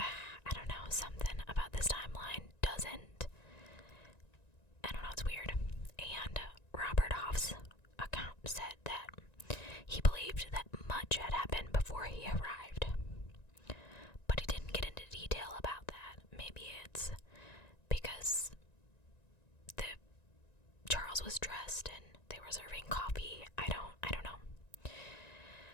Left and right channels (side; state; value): right; late; 1.9 ms